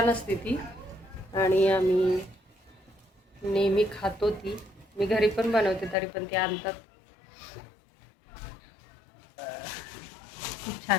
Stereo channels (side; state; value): right; drops out; at 6.0 s